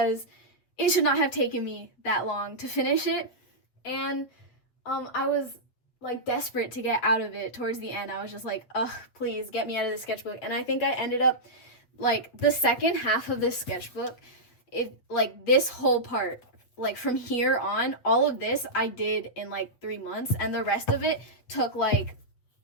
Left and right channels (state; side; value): late; right; 8.0 ms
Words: it should not have taken me that long to finish it. And I was like desperate to get out of it towards the end. I was just like, ugh, please get me out of the sketchbook. And I think I ended up like the second half of this sketchbook, like this whole part, like from here on, all of this I did in like 3 months, and the rest of it took like